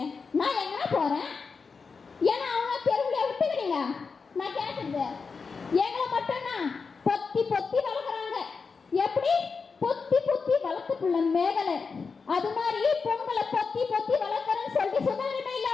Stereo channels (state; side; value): quieter; right; 5.0 dB